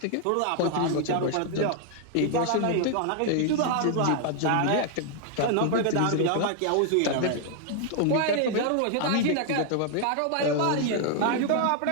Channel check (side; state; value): both; different; correlation 0.00